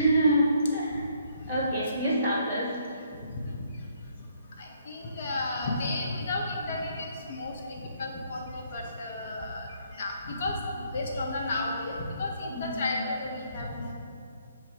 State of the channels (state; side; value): inverted; both; correlation -0.68